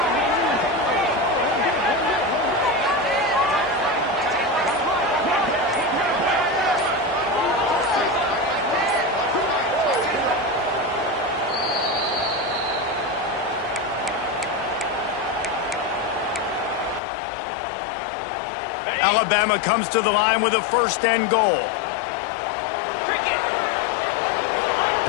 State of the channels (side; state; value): right; drops out; at 17.0 s